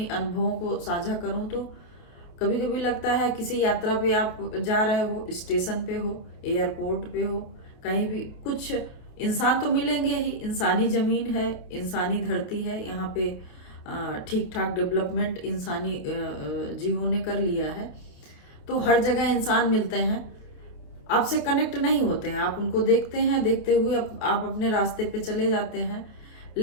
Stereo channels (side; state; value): right; late; 28 ms